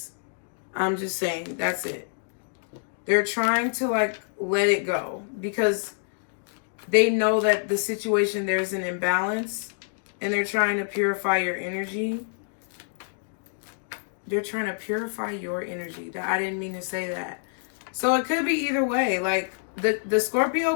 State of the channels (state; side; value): silent; right; digital silence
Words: I'm just saying, that's it. They're trying to like let it go because they know that the situation, there's an imbalance, and they're trying to purify your energy. They're trying to purify your energy. I didn't mean to say that. So it could be either way. Like the